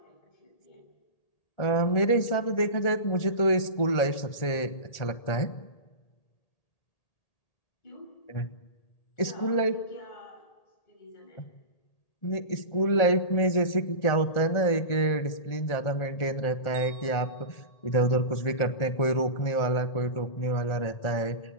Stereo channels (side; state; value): right; late; 1.4 ms